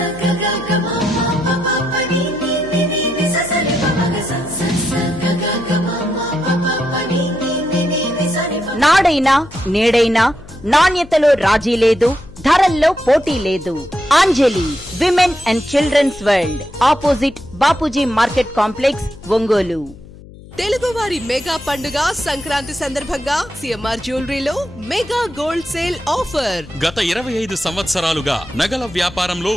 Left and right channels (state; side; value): noise; left; hum, 19 dB below the sound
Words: నాడైనా నేడైనా నాణ్యతలో రాజీ లేదు, ధరల్లో పోటీ లేదు. Anjali women and children's world, opposite Bapuji market complex, Ongole. తెలుగువారి మెగా పండుగ సంక్రాంతి సందర్భంగా సిఎంఆర్ జ్యువెలరీలో మెగా గోల్డ్ సేల్ ఆఫర్. గత 25 సంవత్సరాలుగా నగల వ్యాపారంలో